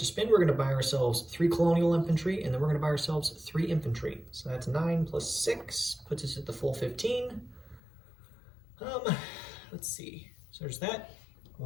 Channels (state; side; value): drops out; right; at 7.8 s